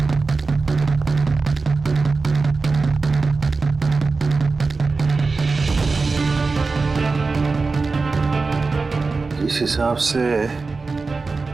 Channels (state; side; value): quieter; left; 4.1 dB